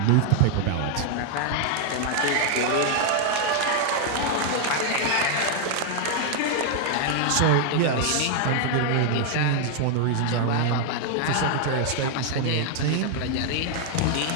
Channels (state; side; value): different; both; correlation 0.00